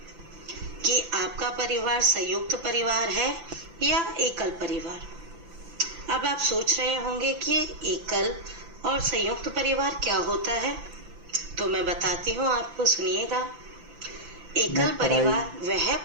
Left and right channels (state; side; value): late; left; 5.9 ms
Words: कि आपका परिवार संयुक्त परिवार है या एकल परिवार? अब आप सोच रहे होंगे कि एकल और संयुक्त परिवार क्या होता है, तो मैं बताती हूँ आपको, सुनिएगा। एकल परिवार वह